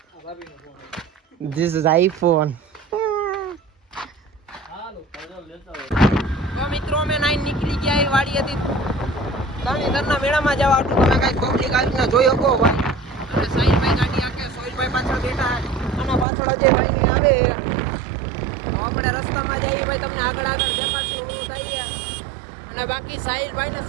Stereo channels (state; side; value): drops out; left; at 16.2 s